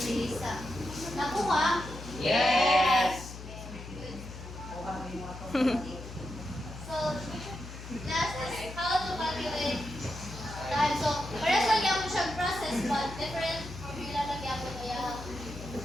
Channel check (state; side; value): noise; left; hum, 11 dB below the sound